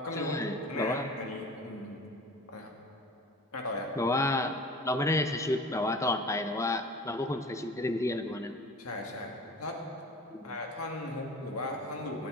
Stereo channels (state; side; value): normal; both; correlation 0.40